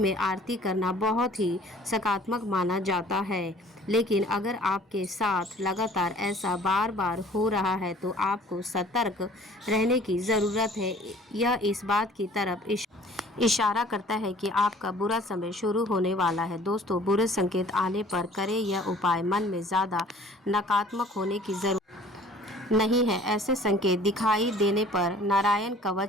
आरती करना बहुत ही सकारात्मक माना जाता है, लेकिन अगर आपके साथ लगातार ऐसा बार बार हो रहा है तो आपको सतर्क रहने की ज़रूरत है। यह इस बात की तरफ इशारा करता है कि आपका बुरा समय शुरू होने वाला है। दोस्तों, बुरे संकेत आने पर करें यह उपाय। मन में ज़्यादा नकारात्मक होने की ज़रूरत नहीं है। ऐसे संकेत दिखाई देने पर नारायण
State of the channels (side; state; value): both; normal; correlation 0.52